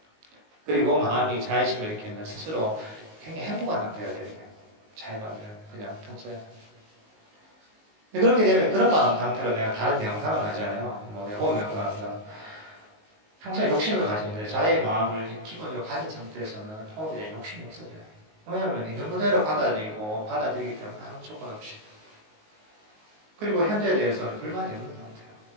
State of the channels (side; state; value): left; late; 19 ms